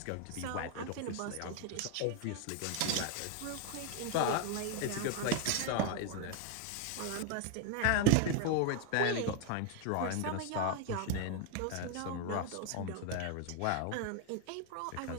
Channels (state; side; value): different; both; correlation 0.00